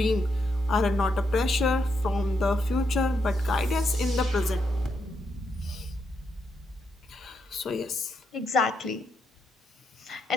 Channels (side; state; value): both; normal; correlation 0.80